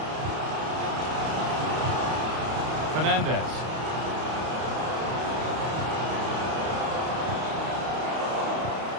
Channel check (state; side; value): late; left; 31 ms